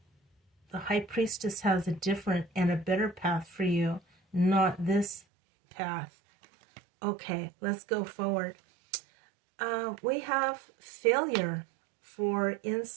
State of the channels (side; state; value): left; drops out; at 5.2 s